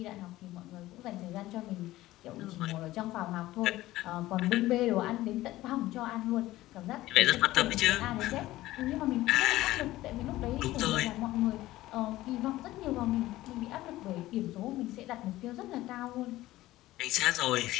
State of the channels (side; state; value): right; quieter; 16.5 dB